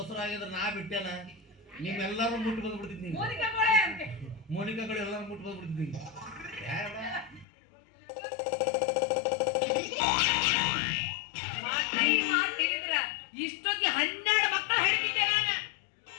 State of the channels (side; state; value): right; drops out; at 7.5 s